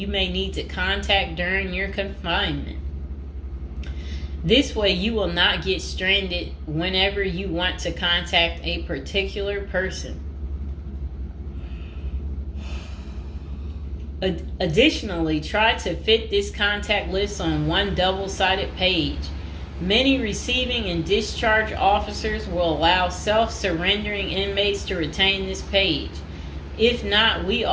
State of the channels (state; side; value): identical; both; correlation 1.00